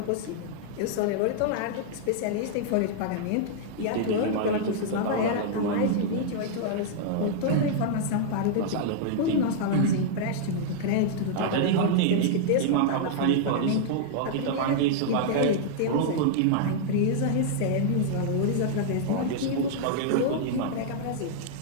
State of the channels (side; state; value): both; different; correlation -0.01